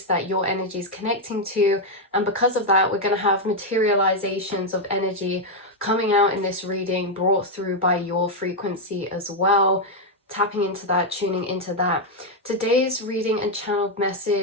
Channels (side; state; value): both; normal; correlation 0.01